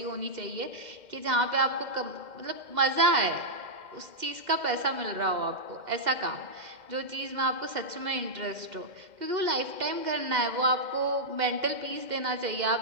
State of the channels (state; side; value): late; left; 2.1 ms